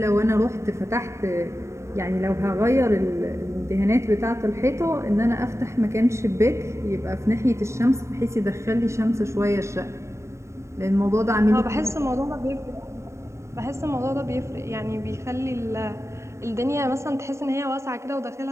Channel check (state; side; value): late; left; 0.14 ms